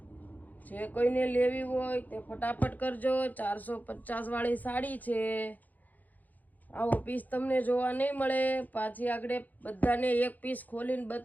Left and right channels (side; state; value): right; late; 0.082 ms